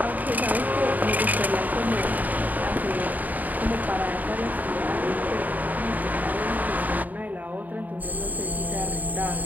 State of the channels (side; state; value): left; late; 0.081 ms